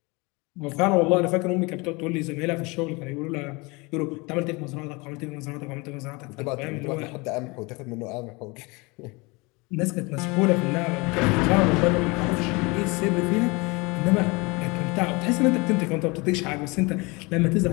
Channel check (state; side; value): quieter; right; 26.3 dB